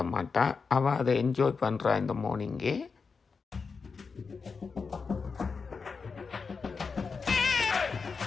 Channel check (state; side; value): quieter; right; 5.0 dB